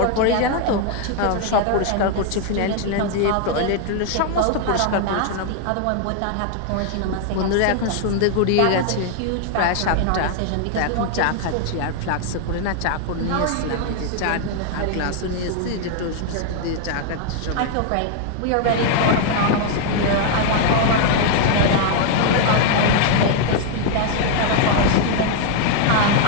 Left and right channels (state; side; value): different; both; correlation 0.00